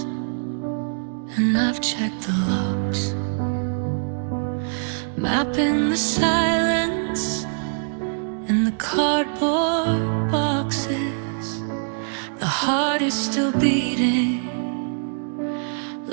and I've checked the locks, mapping the silence in the cardboard boxes. The heart is still beating,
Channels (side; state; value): left; silent; 63 dB below the other